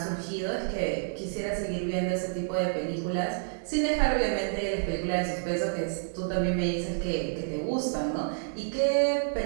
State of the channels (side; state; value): left; silent; digital silence